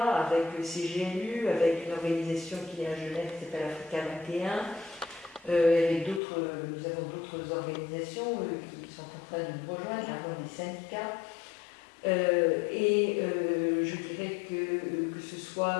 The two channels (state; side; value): drops out; right; at 6.2 s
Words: avec CGLU, avec une organisation qui est à Genève qui s'appelle Africa 21. Avec nous avons d'autres organisations qui sont en train de nous rejoindre, par exemple des syndicats. Je dirais que ce soit